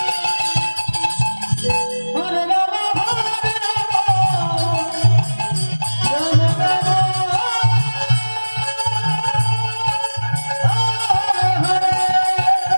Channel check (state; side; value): inverted; both; correlation -1.00